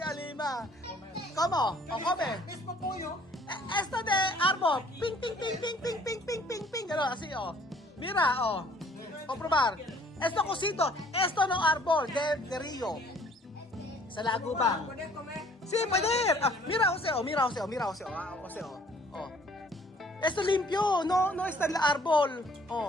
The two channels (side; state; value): both; normal; correlation 0.57